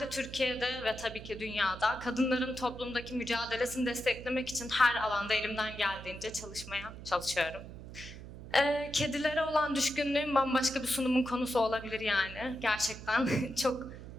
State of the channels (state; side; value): noise; right; hum, 13 dB below the sound